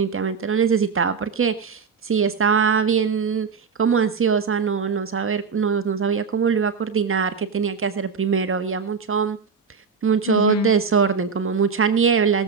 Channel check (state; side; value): quieter; left; 5.7 dB